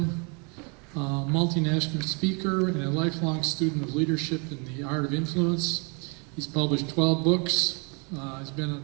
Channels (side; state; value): left; quieter; 33.8 dB